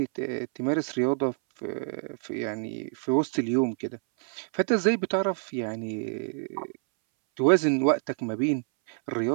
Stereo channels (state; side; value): silent; left; 60 dB below the other